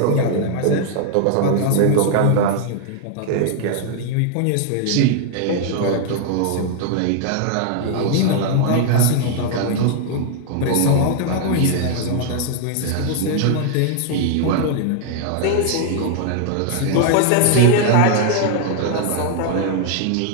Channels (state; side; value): different; both; correlation 0.00